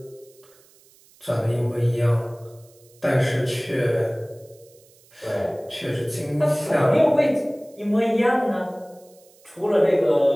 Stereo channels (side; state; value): right; noise; hiss, 29 dB below the sound